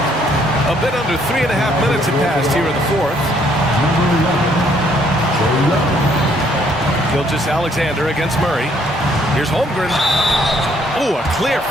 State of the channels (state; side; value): normal; both; correlation 0.67